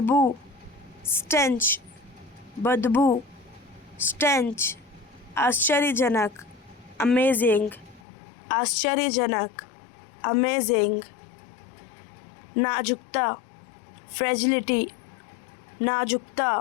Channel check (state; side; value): drops out; right; at 8.0 s